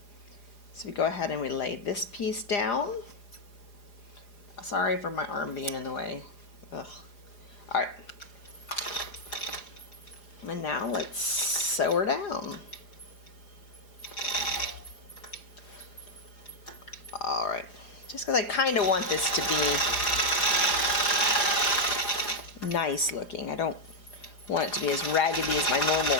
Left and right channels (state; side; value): late; right; 4.9 ms